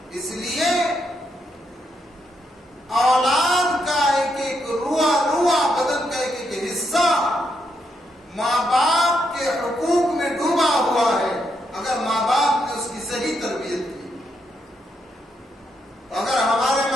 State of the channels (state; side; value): normal; both; correlation 0.79